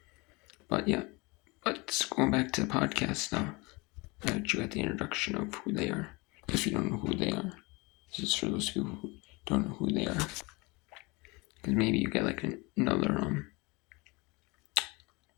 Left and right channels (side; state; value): right; quieter; 25.9 dB